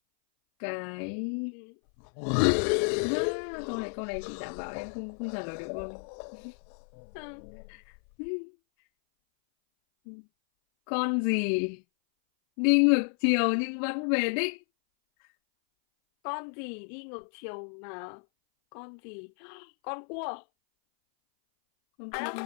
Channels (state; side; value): silent; right; 57 dB below the other